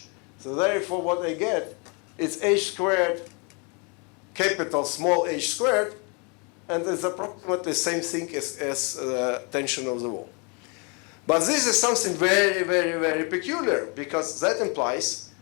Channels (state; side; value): quieter; right; 33.2 dB